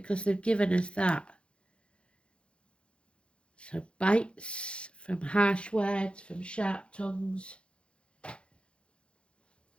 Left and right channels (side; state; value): right; late; 0.057 ms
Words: they've given us that. So bites from harsh words, from sharp tongues.